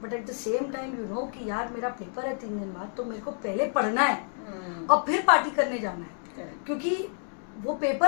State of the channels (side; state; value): right; silent; 59 dB below the other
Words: but at the same time you know कि यार मेरा पेपर है 3 दिन बाद, तो मेरे को पहले पढ़ना है और फिर पार्टी करने जाना है, क्योंकि वो